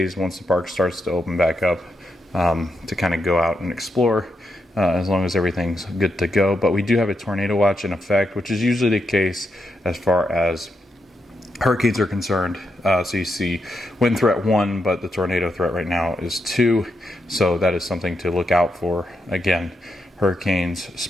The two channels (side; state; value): both; normal; correlation 0.83